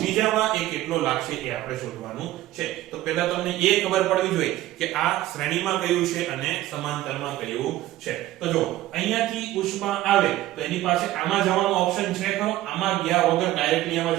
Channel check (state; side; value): quieter; left; 15.2 dB